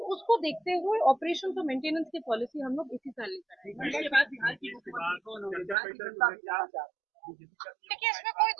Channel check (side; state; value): left; drops out; at 5.8 s